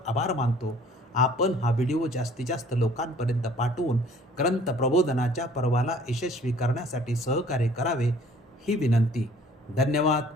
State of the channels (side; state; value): both; normal; correlation 0.54